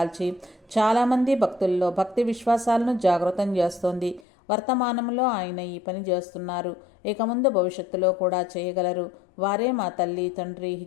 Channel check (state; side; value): drops out; right; at 4.2 s